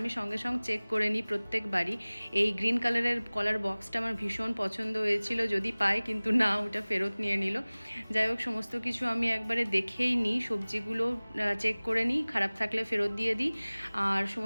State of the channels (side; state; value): both; inverted; correlation -1.00